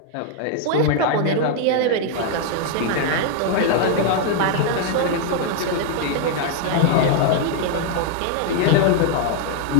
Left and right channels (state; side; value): different; both; correlation 0.00